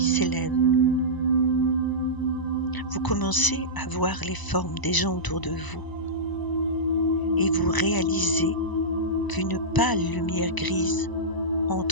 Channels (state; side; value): late; right; 1.0 ms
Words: s'élève. Vous commencez à voir les formes des gens autour de vous et vous réalisez qu'une pâle lumière grise